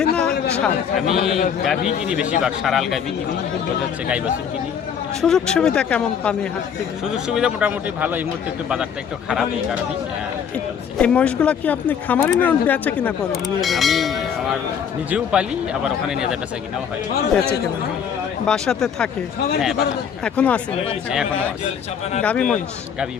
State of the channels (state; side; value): quieter; right; 7.7 dB